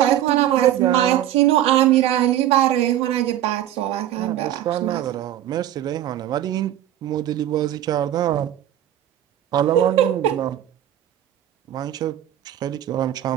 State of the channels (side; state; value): left; quieter; 12.1 dB